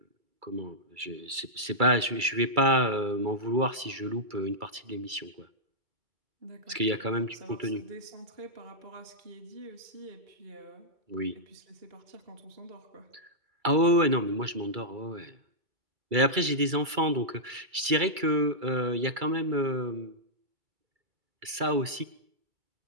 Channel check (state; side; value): late; left; 2.3 ms